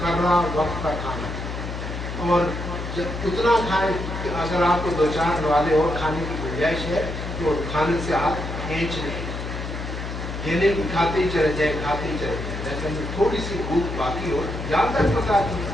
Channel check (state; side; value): noise; left; hum, 6 dB below the sound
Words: وقت پر کھانا، اور جب اتنا کھائیں کہ اگر آپ کو 2-4 والے اور کھانے کی گنجائش ہے تو کھانے سے ہاتھ کھینچ لیں، یہ نہیں کہ کھاتے ہی چلے جائیں، کھاتے ہی چلے جائیں، لیکن تھوڑی سی بھوک باقی ہو، یاد تک بتا دیں،